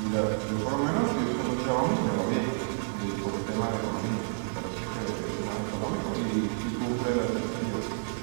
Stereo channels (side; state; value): left; silent; digital silence